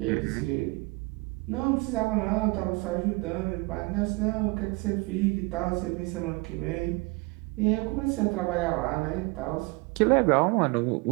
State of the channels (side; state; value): left; quieter; 25.9 dB